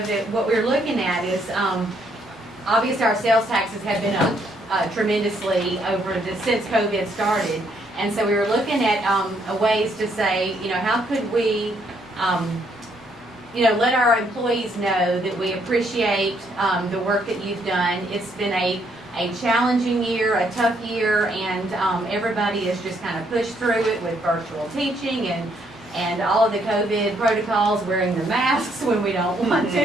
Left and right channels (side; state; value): both; normal; correlation 0.71